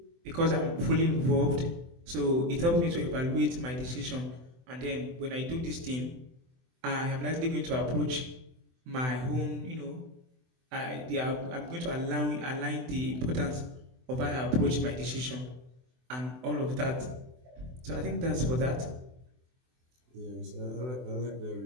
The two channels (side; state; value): left; late; 24 ms